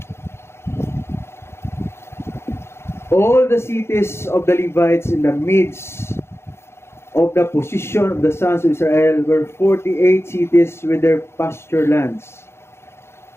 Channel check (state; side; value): late; right; 0.12 ms